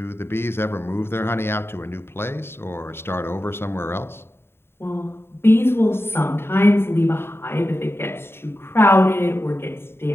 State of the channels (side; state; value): right; late; 0.11 ms